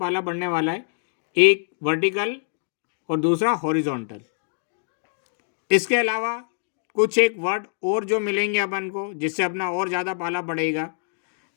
पड़ने वाला है, एक वर्टिकल और दूसरा हॉरिजॉन्टल। इसके अलावा कुछ एक वर्ड और जो मिलेंगे अपन को जिससे अपना और ज़्यादा पाला पड़ेगा,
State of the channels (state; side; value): silent; right; digital silence